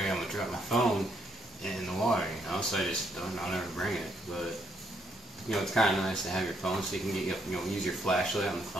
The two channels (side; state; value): both; normal; correlation 0.74